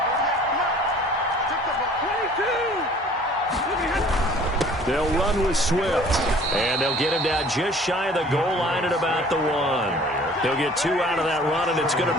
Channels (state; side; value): normal; both; correlation 0.51